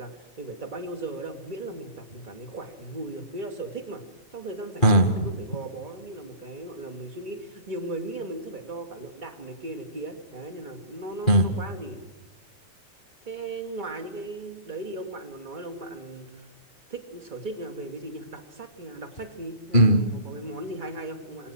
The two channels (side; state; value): right; late; 2.4 ms